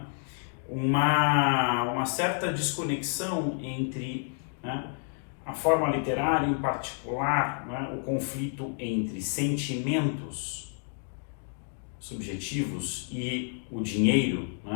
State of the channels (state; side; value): silent; right; 56 dB below the other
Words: uma certa desconexão entre, né, a forma literária, em particular, né, o conflito entre sentimentos subjetivos e o dinheiro,